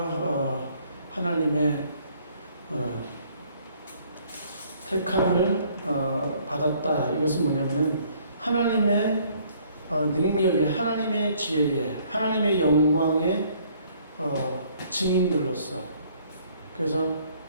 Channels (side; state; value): both; inverted; correlation -0.61